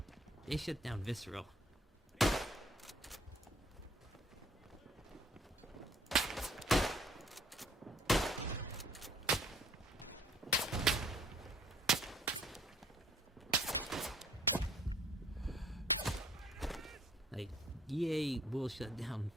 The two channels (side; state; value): both; normal; correlation 0.58